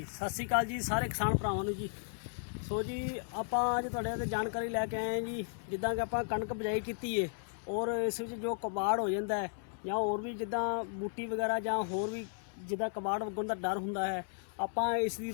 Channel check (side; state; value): right; silent; digital silence